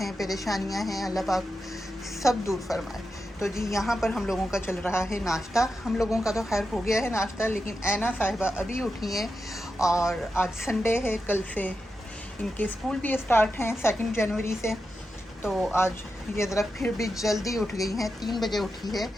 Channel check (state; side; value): normal; both; correlation 0.89